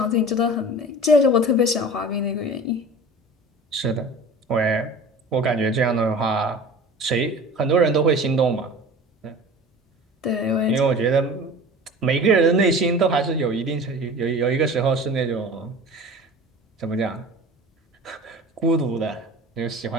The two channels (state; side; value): normal; both; correlation 0.39